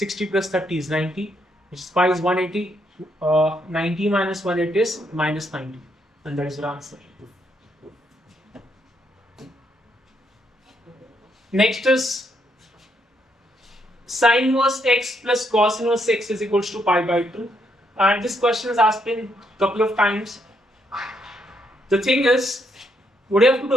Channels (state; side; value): normal; both; correlation 0.75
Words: plus 30 is 90, which is pi is 180. 90 minus 180 is minus 90. And that is your answer. Next is sin inverse x plus cos inverse x is equals to pi by 2. And this question is asked in a couple of times. The thing is, what you have to